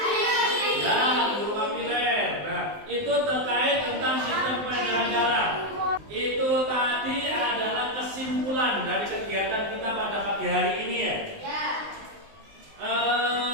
Itu terkait tentang sistem peredaran darah. Itu tadi adalah kesimpulan dari kegiatan kita pada pagi hari ini ya.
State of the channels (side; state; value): left; late; 19 ms